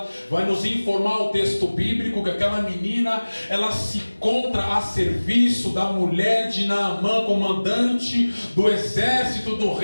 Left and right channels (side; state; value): both; inverted; correlation -1.00